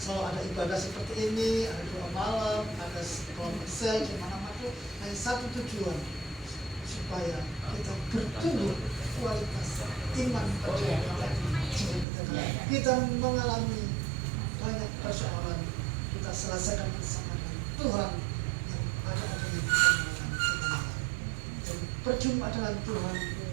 ada ibadah seperti ini, ada doa malam, ada kelompok sel di mana-mana. Hanya satu tujuan, supaya kita bertumbuh kualitas iman percaya kita mengalami banyak persoalan, kita selesaikan bersama dengan Tuhan yang ada-adanya kita mengalami kemenangan. Dan berjumpa dengan Tuhan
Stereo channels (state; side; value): drops out; left; at 12.1 s